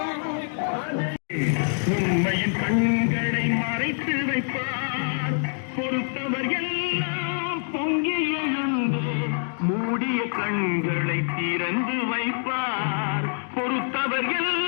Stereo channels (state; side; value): silent; right; 61 dB below the other